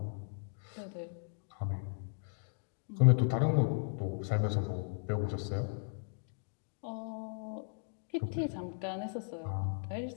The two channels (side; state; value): right; silent; digital silence